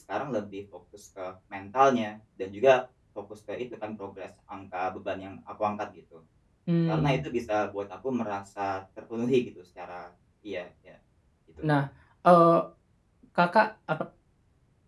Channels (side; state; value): both; identical; correlation 1.00